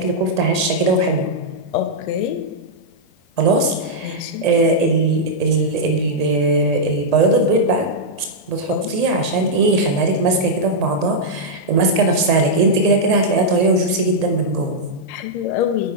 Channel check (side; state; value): right; late; 1.8 ms